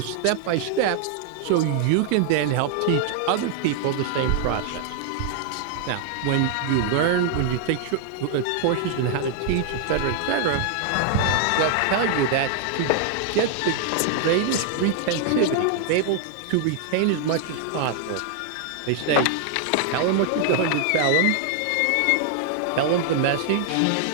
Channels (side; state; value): both; different; correlation 0.00